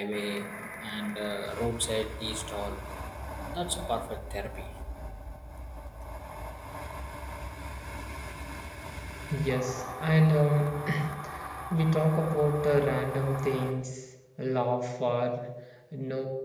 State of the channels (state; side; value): identical; both; correlation 1.00